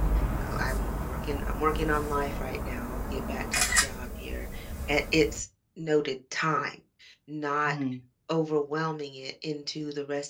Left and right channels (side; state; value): both; identical; correlation 1.00